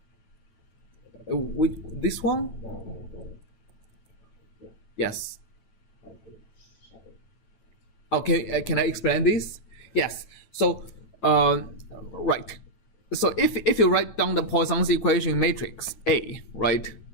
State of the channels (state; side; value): late; right; 9.1 ms